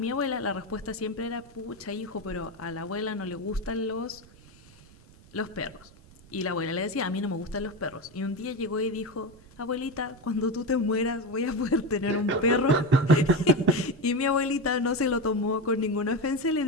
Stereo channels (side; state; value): right; noise; rumble, 24 dB below the sound